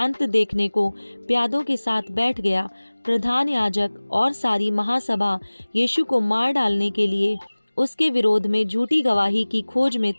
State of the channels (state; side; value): inverted; both; correlation -1.00